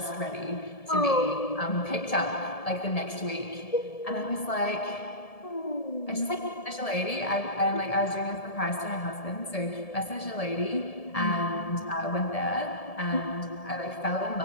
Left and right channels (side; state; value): right; late; 1.7 ms